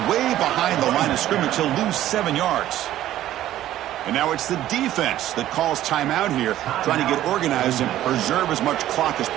way behind the line of scrimmage. He'll lose 7 yards. And now it's the defense that calls timeout here, trying to get organized and preserve as much clock as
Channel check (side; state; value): left; quieter; 13.2 dB